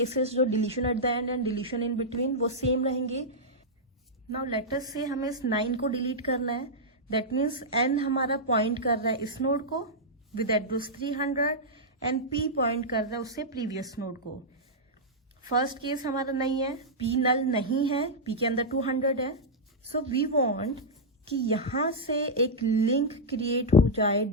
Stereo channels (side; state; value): both; normal; correlation -0.08